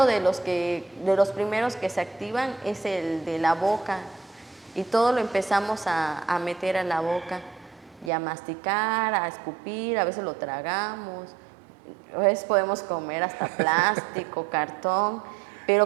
de los primeros que se activan es el de la boca. Y todo lo empezamos a meter a la boca y a masticar, a escupir, a veces lo tragamos, a veces podemos comer hasta plástico, cartón.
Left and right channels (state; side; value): drops out; left; at 8.1 s